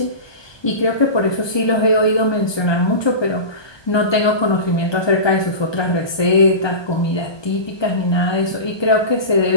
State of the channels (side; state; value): right; late; 1.2 ms